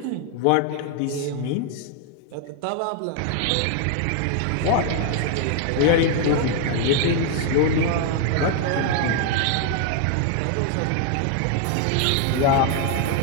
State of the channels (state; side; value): different; both; correlation 0.00